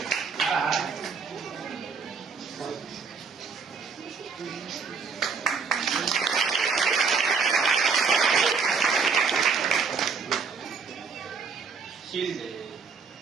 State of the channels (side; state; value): left; quieter; 5.3 dB